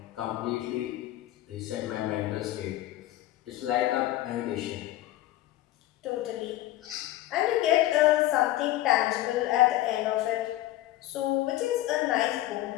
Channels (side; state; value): right; quieter; 15.2 dB